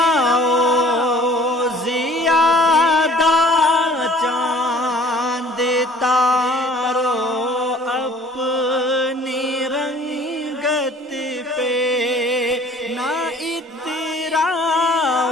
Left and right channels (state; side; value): normal; both; correlation 0.52